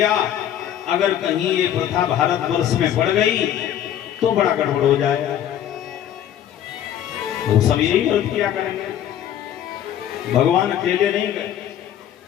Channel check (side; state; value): right; quieter; 10.6 dB